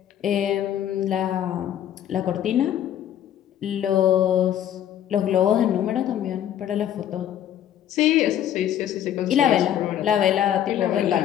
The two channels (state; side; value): quieter; right; 10.7 dB